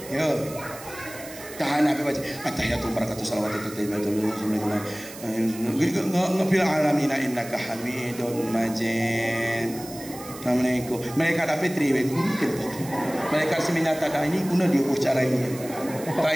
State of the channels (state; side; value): noise; right; hiss, 15 dB below the sound